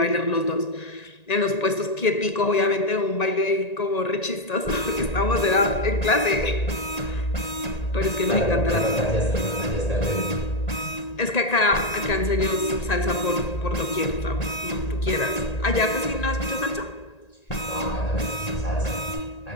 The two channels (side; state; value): right; late; 1.9 ms